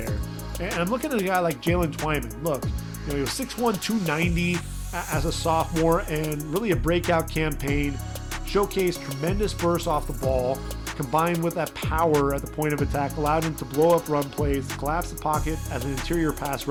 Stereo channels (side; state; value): both; identical; correlation 1.00